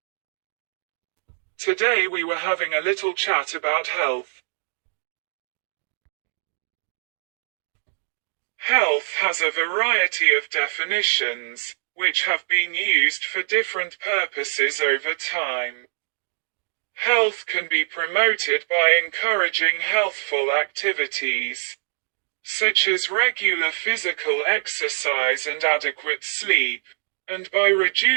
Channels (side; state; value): left; silent; digital silence